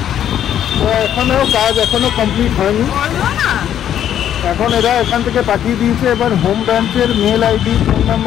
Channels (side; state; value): right; quieter; 10.3 dB